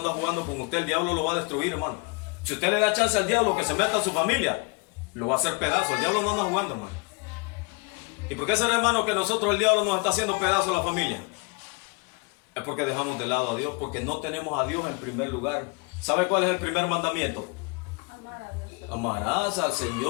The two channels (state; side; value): quieter; right; 30.1 dB